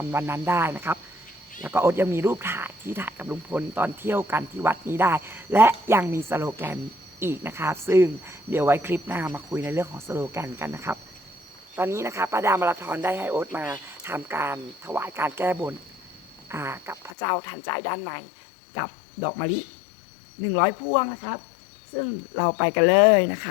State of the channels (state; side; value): drops out; right; at 17.1 s